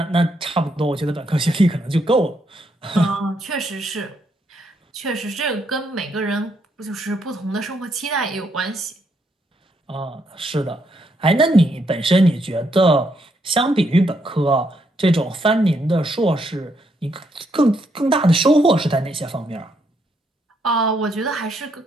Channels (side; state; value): both; normal; correlation 0.76